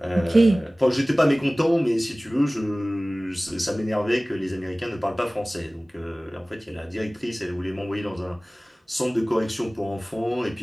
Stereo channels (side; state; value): both; normal; correlation 0.98